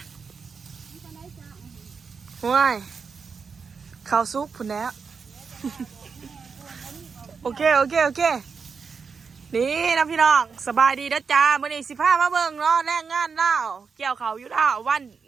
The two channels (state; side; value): quieter; left; 5.5 dB